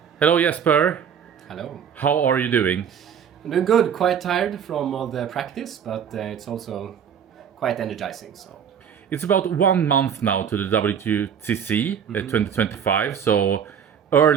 Hello, Jesper. Hello. How are you doing? I'm doing good. Quite tired from all the practice, but it's also quite energizing. So It's about 1 month now to the WTC 2025, so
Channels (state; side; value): quieter; left; 8.0 dB